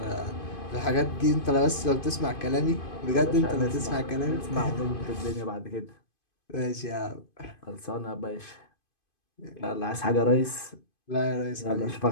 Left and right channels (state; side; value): late; right; 2.5 ms